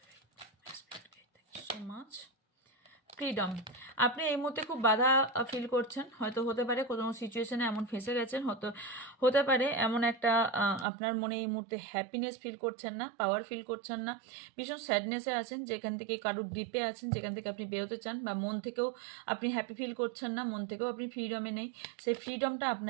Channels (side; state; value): left; drops out; at 10.9 s